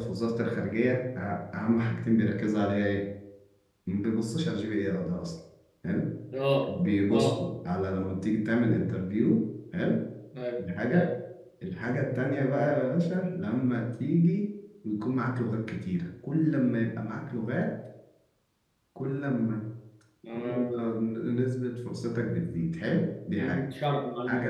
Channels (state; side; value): identical; both; correlation 1.00